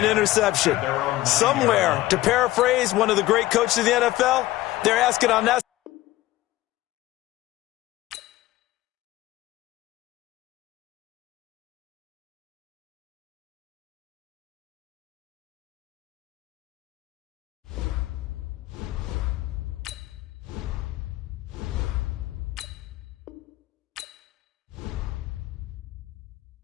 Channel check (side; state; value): right; quieter; 16.6 dB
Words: interception. Somewhere, to paraphrase one of the great coaches of the NFL, they're asking on that.